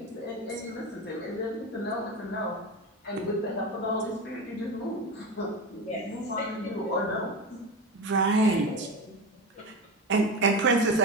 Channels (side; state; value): both; normal; correlation 0.23